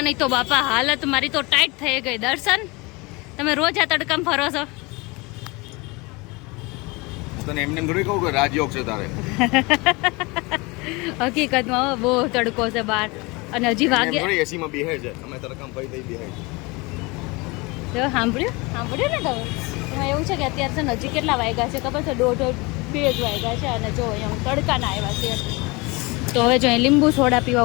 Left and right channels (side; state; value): right; quieter; 25.7 dB